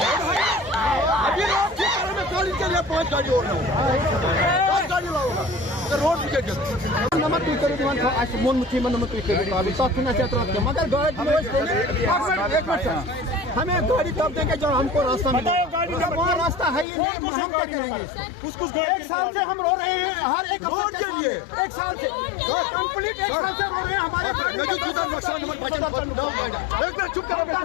अभी रोड ठीक करने में गाड़ी के लिए 5 गाड़ी और लाऊंगा, 10 गाड़ी लाऊंगा रोड ठीक कर नमक तू करो दीवान था आज मोन मुठी मन नमक तू करो अभी तक ना चल रहा है मगर गाड़ी एक मिनट हमें गाड़ी तब देंगे जब हमको रास्ता मिले। वहाँ रास्ता है ही नहीं, हम क्या करेंगे इसको? एक साल से हम रो रहे हैं, हर एक रोड के लिए एक साल से कंप्लीट एक साल से रो रहे हैं हमारे। एक मिनट चुप करो,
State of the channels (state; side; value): drops out; right; at 16.9 s